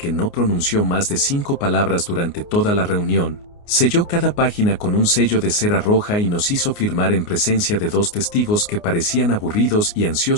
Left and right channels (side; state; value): right; late; 29 ms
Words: no pronunció más de 5 palabras durante toda la reunión, selló cada página con un sello de cera roja y nos hizo firmar en presencia de 2 testigos que parecían aburridos y